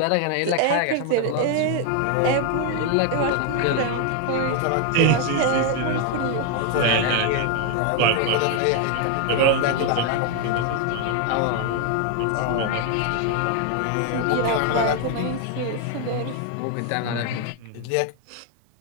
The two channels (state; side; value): different; both; correlation 0.00